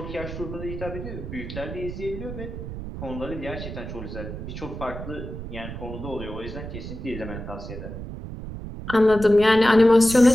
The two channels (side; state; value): right; noise; rumble, 9 dB below the sound